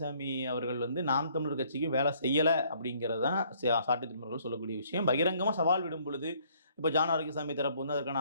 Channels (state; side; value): inverted; both; correlation -0.63